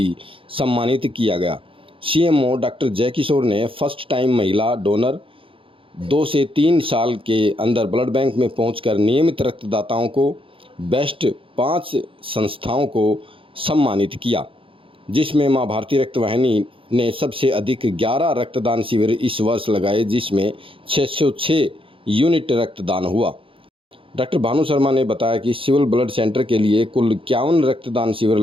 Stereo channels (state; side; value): late; left; 0.26 ms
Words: सम्मानित किया गया। सीएमओ डॉक्टर जयकिशोर ने फर्स्ट टाइम महिला डोनर 2 से 3 साल के अंदर ब्लड बैंक में पहुंचकर नियमित रक्तदाताओं को बेस्ट 5 संस्थाओं को सम्मानित किया, जिसमें मां भारती रक्त वाहिनी ने सबसे अधिक 11 रक्तदान शिविर इस वर्ष लगाए, जिसमें 606 यूनिट रक्तदान हुआ। डॉक्टर भानु शर्मा ने बताया कि सिविल ब्लड सेंटर के लिए कुल 51 रक्तदान शिविर